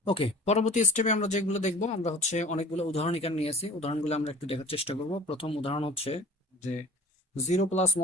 ওকে, পরবর্তী স্টেপে আমরা যেগুলো দেখবো, আমরা হচ্ছে অনেকগুলো উদাহরণ এখানে নিয়েছি। উদাহরণগুলো আমরা একটু দেখার চেষ্টা করব। প্রথম উদাহরণ হচ্ছে যে জিরো প্লাস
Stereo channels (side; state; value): both; normal; correlation 0.44